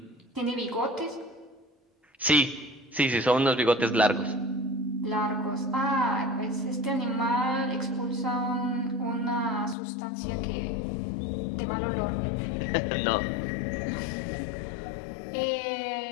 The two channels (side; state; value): right; drops out; at 9.8 s